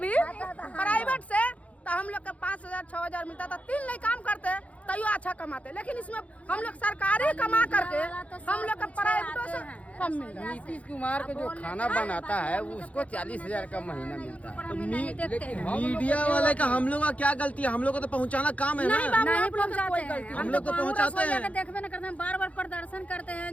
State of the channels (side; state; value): right; late; 0.066 ms